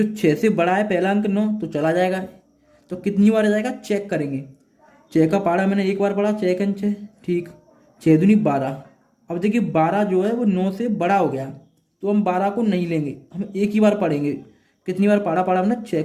6 से बड़ा है पहला अंक 9, तो चला जाएगा, तो कितनी बार जाएगा चेक करेंगे। 6 का पारा मैंने एक बार पढ़ा, 6 6, ठीक, 6 दूनी 12। अब देखिए 12 जो है वो 9 से बड़ा हो गया, तो हम 12 को नहीं लेंगे, हम एक ही बार पढ़ेंगे। कितनी बार पाड़ा पढ़ा हमने, 6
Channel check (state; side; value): identical; both; correlation 1.00